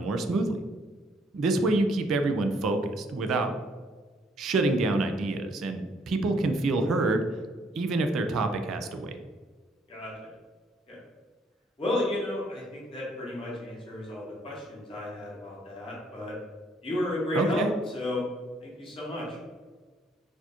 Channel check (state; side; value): normal; both; correlation 0.67